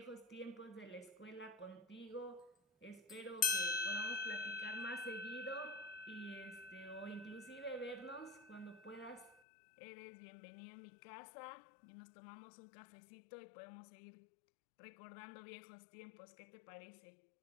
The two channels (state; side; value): drops out; right; at 9.3 s